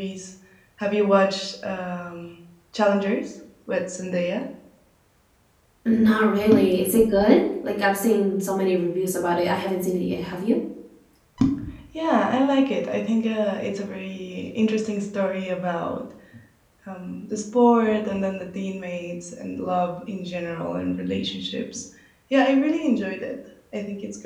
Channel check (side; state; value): both; identical; correlation 1.00